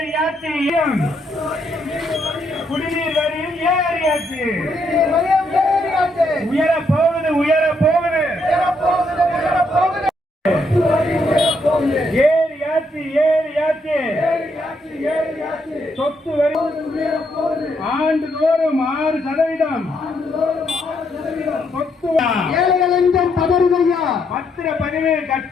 குடிநீர் வரியும் ஏறியாச்சு, உயர போகுது உயர போகுது, ஏறியாச்சு ஏறியாச்சு, சொத்து வரி ஆண்டுதோறும் 6%, சொத்து ஏழைகள் என்றும் பதறுதையா, பத்திரப்பதிவு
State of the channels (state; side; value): normal; both; correlation 0.75